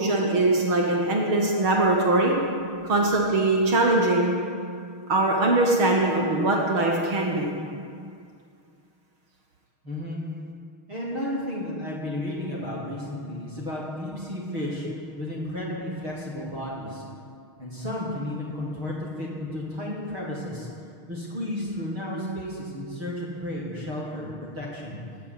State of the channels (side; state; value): left; late; 6.4 ms